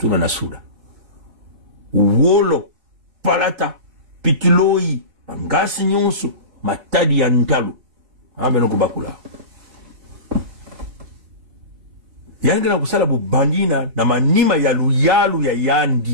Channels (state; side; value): late; left; 4.4 ms